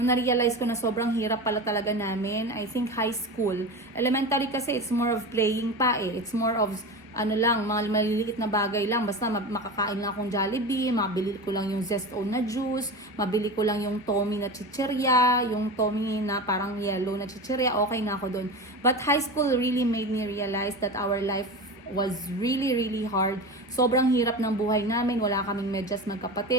na-realize ko na sobrang hirap pala talaga namin. I think high school. Elementary kasi it's more of playing pa eh. It's more of mga maliliit na bagay lang. Basta makakain lang akong Jollibee, mabili ko lang yung Zesto na juice, mabili ko lang yung Tommy na chichirya, yung Tommy na parang yellow na chichirya, okay na ako dun. But high school really made me realize that our life was really hard. Sobrang hirap ng buhay namin, wala kaming medyas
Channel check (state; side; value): normal; both; correlation 0.27